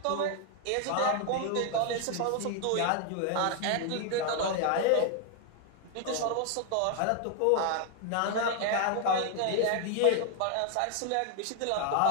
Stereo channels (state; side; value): different; both; correlation 0.00